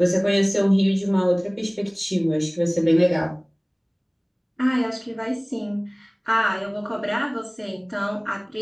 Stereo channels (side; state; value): both; identical; correlation 1.00